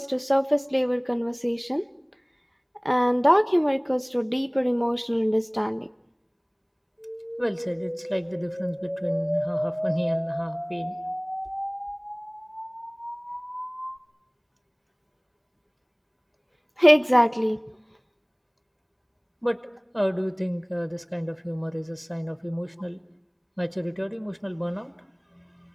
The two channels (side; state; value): both; identical; correlation 1.00